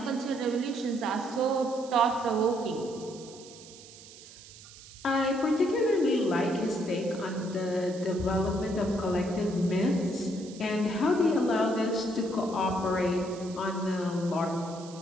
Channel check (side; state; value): right; noise; hiss, 19 dB below the sound